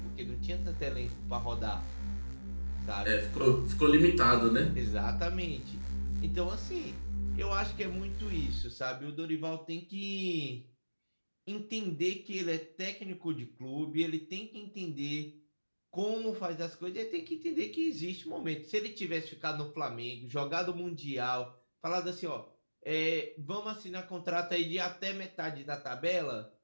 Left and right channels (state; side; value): inverted; both; correlation -1.00